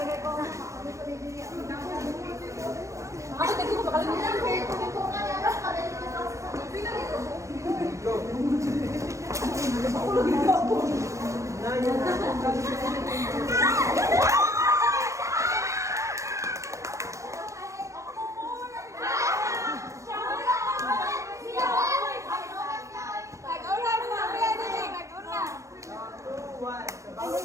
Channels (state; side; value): late; left; 0.15 ms